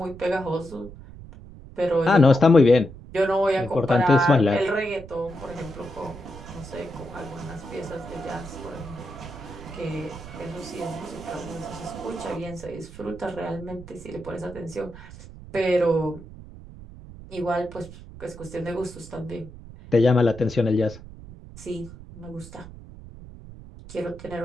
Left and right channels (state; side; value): noise; right; rumble, 16 dB below the sound